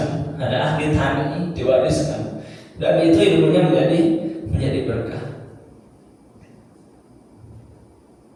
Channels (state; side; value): identical; both; correlation 1.00